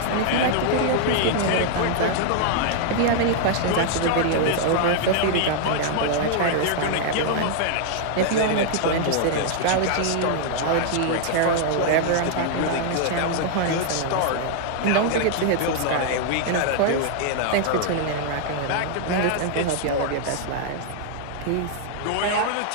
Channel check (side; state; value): both; different; correlation -0.01